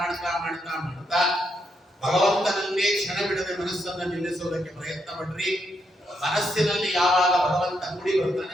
ಮಾಡ್ತಾ ಮಾಡ್ತಾ ಭಗವಂತನನ್ನೇ ಕ್ಷಣ ಬಿಡದೆ ಮನಸ್ಸನ್ನು ನಿಲ್ಲಿಸುವುದಕ್ಕೆ ಪ್ರಯತ್ನ ಪಡ್ರಿ. ಮನಸ್ಸಿನಲ್ಲಿ ಯಾವಾಗ ಭಗವಂತ ಕೂಡಿ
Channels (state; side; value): normal; both; correlation 0.79